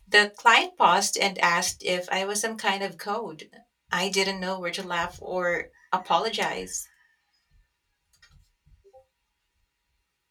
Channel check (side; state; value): both; identical; correlation 1.00